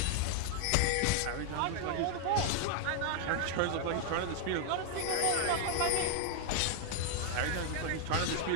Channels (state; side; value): different; both; correlation 0.00